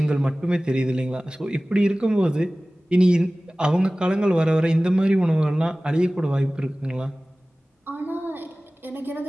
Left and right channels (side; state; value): both; normal; correlation 0.98